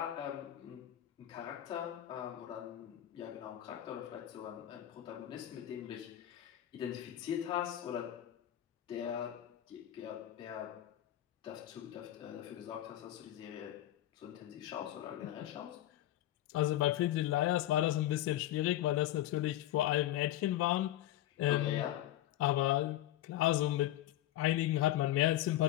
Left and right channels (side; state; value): right; quieter; 13.5 dB